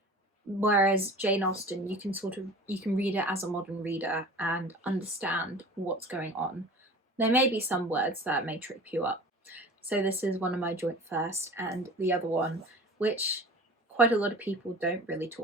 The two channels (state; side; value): normal; both; correlation 0.39